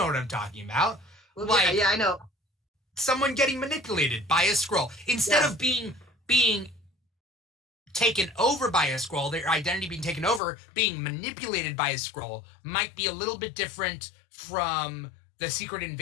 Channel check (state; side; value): drops out; right; at 10.4 s